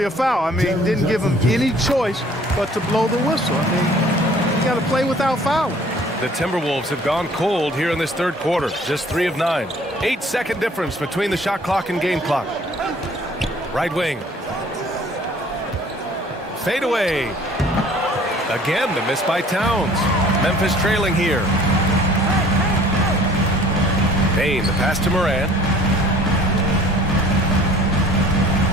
a foul. I mean, didn't give him any choice but to blow the whistle. I mean, you got to play without fouling. The Timberwolves have gone cold here in this third quarter. Just 3 of 9. 8-second difference between the shot clock and game clock. Right wing. Fade away. Again, the miss by Towns. Memphis trailing here. Bane, the pass to Morant.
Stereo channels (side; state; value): both; normal; correlation 0.53